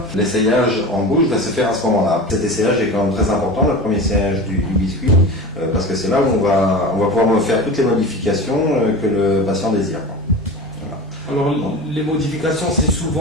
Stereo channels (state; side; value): normal; both; correlation 0.32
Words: L'essayage en bouche va se faire à ce moment-là. Cet essayage est quand même très important, le premier essayage du biscuit, parce que c'est là où on va pouvoir faire toutes les modifications que le patient désire. Voilà. Alors les modifications, c'est